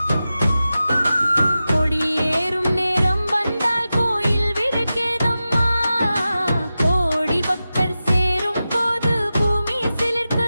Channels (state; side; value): inverted; both; correlation -0.93